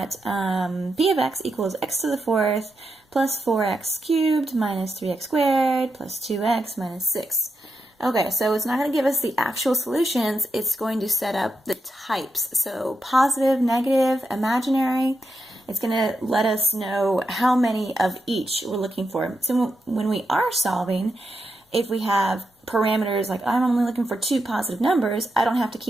p of x equals x to the fourth plus 4x cubed minus 3x squared plus 2x minus 6. Okay, so it's not going to give us the actual solutions, it's going to set up the types. So positive, negative, imaginary. It's going to let us know how many of each we're looking for. So when we are solving, if we have parameters like I'm only looking for 2 positive numbers, I don't have to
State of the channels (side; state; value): both; normal; correlation 0.85